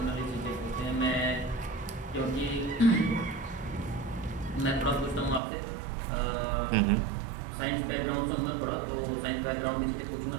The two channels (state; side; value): drops out; left; at 5.4 s